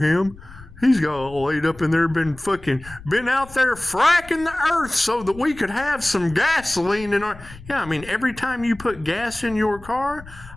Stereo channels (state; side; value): noise; left; rumble, 18 dB below the sound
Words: him. He's got laid up in there, been out there fracking the earth so that we could have some gasoline in our... Yeah, I mean, every time you put gas in your car,